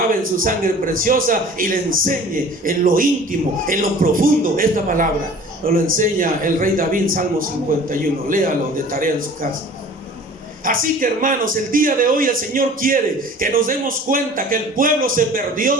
en su sangre preciosa y le enseñe en lo íntimo, en lo profundo, esta palabra. Nos lo enseña el rey David, Salmo 51. Léalo de tarea en su casa. Así que, hermanos, el día de hoy el Señor quiere que nos demos cuenta que el pueblo se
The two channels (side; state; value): both; normal; correlation 0.45